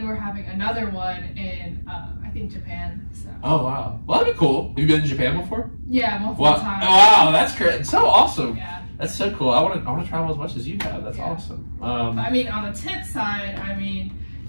we're having another one in I think Japan. So. Oh wow, well that'd be cool. Have you been to Japan before? Yeah, multiple Wow, times. wow, that's great. It's so awesome. Yeah. That's so cool. I want to travel as much as you have. That's awesome. But, I mean, on the tip side, I mean,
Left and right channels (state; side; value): inverted; both; correlation -1.00